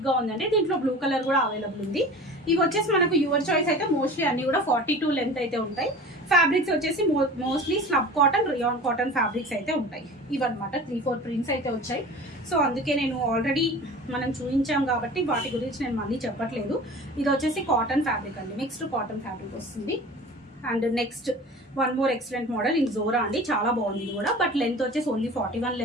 గా ఉందండి. దీంట్లో బ్లూ కలర్ కూడా అవైలబుల్ ఉంది. ఇవి వచ్చేసి మనకు యువర్ చాయిస్ అయితే మోస్ట్లీ అన్ని కూడా 42 లెంత్ అయితే ఉంటాయి. ఫ్యాబ్రిక్స్ వచ్చేసి mostly slub cotton, rayon cotton fabrics అయితే ఉంటాయి. ఇవన్నమాట 3-4 ప్రింట్స్ అయితే వచ్చాయి. సో అందుకే నేను ఆల్రెడీ మనం చూపించాం కాబట్టి వాటి గురించి నేను మళ్ళీ చెప్పట్లేదు. ఇది వచ్చేసి కాటన్ ఫ్యాబ్రిక్ అండి. మిక్స్డ్ కాటన్ ఫ్యాబ్రిక్ వస్తుంది. And next one more excellent model in Zora అండి. చాలా బాగుంది ఇది కూడా. బట్ లెంత్ వచ్చేసి ఓన్లీ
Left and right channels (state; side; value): normal; both; correlation 0.39